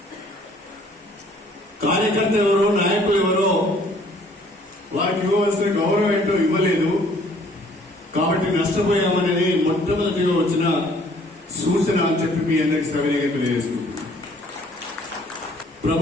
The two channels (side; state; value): both; normal; correlation 0.59